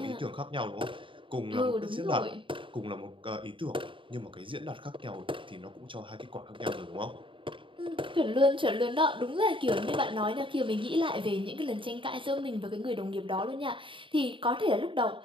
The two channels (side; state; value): left; late; 0.25 ms